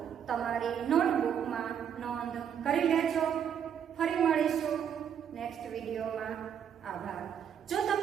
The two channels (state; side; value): quieter; left; 8.5 dB